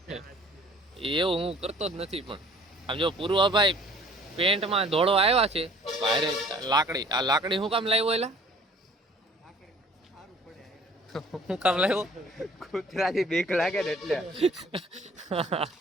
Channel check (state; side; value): normal; both; correlation 0.52